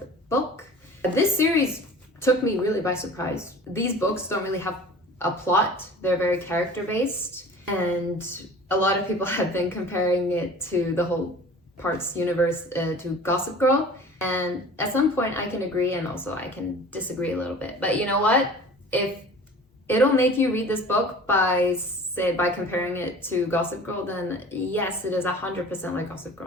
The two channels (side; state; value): both; normal; correlation 0.43